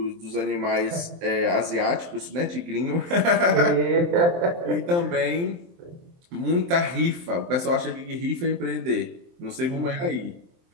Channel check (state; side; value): late; left; 23 ms